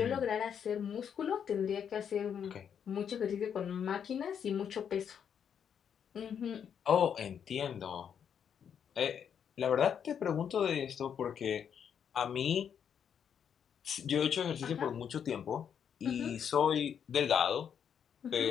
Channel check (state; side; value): quieter; right; 8.0 dB